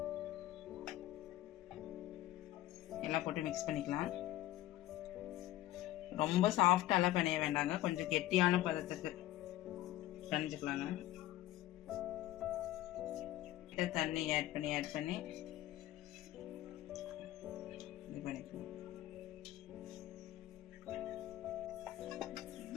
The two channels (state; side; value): quieter; right; 15.0 dB